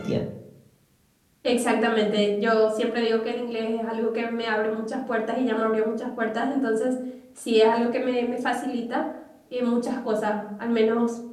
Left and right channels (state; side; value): identical; both; correlation 1.00